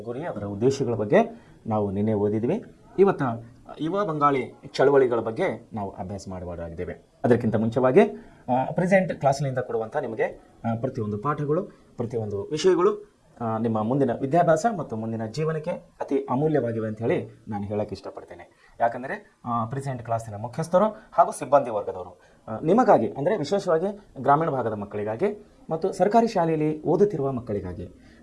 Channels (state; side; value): identical; both; correlation 1.00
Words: ಗುರಿ, ಅದರ ಉದ್ದೇಶಗಳ ಬಗ್ಗೆ ನಾವು ನಿನ್ನೆ ಓದಿದ್ವಿ. ಇವತ್ತು ಯುವ ಬಂಗಾಳಿ ಚಳವಳಿಗಳ ಬಗ್ಗೆ ನಾವು ಅಭ್ಯಾಸ ಮಾಡಬಹುದಾಗಿದ್ದೇವೆ. ಅದಕ್ಕಿಂತ ಮುಂಚೆವಾಗಿ ಪ್ರೆಸೆಂಟ್ ಕ್ಲಾಸ್ನಿಂದ ಕೊಡುವಂಥ ನಿಮಗೆ ಪ್ರತಿಯೊಂದು ಪಾಠಗಳು, ಪ್ರತಿಯೊಂದು ವಿಷಯಗಳು ನಿಮ್ಮ ಮುಂದಿನ ವಿದ್ಯಾಭ್ಯಾಸ ಮತ್ತು ಮುಂದಿನ ಜೀವನಕ್ಕೆ ಅತಿ ಅಮೂಲ್ಯವಾಗಿವೆ ಅಂತ ಹೇಳಿ ನಾನು ಹೇಳೋಕ್ಕೆ ಇಷ್ಟಪಡ್ತೇನೆ. ಯಾಕಂದರೆ ಪ್ರೆಸೆಂಟ್ ಕ್ಲಾಸಿನ ಮುಖ್ಯಸ್ಥರು ಹಾಗೂ ಸಿಬ್ಬಂದಿ ವರ್ಗದವರು ನಿಮಗಾಗಿ, ಅಂದರೆ ವಿಶೇಷವಾಗಿ ಗ್ರಾಮೀಣ ಭಾಗದ ಮಕ್ಕಳಿಗಾಗಿ ಮತ್ತು ಸರ್ಕಾರಿ ಶಾಲೆಯಲ್ಲಿ ಓದುತ್ತಿರುವ ಮಕ್ಕಳಿಗಾಗಿ